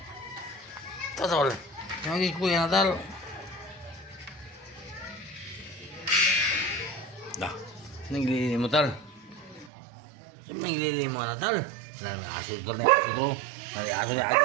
Tatal. Lagi kuya tal. Dah. Naglili mo tal. Naglili mo na tal. May aso tal na aso to. May aso na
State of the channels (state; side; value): drops out; left; at 9.7 s